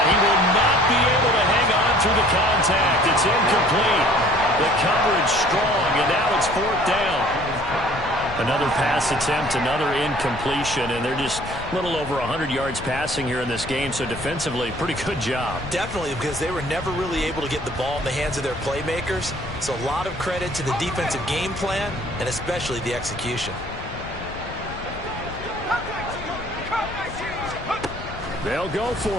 he will not be able to hang on through the contact. It's incomplete. The coverage strong, and now it's fourth down. Another pass attempt, another incompletion, and they're just a little over 100 yards passing here in this game, so defensively, pretty good job. Definitely, because they were never really able to get the ball in the hands of their playmakers, so a lot of credit to the defensive game plan, and especially the execution. They'll go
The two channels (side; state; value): left; noise; rumble, 12 dB below the sound